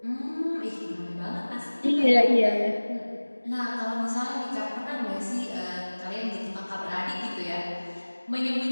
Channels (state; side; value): inverted; both; correlation -1.00